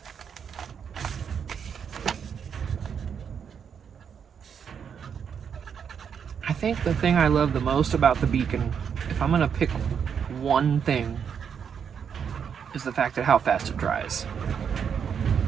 I think the thing I love the most about the beacon, if I'm gonna pick one thing, is the fact that how fast it dries.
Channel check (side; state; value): left; quieter; 7.3 dB